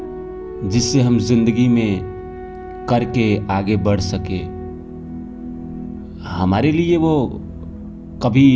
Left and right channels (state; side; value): identical; both; correlation 1.00